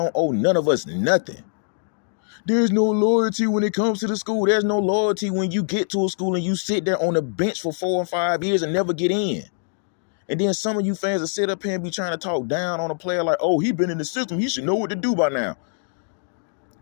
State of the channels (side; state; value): right; silent; digital silence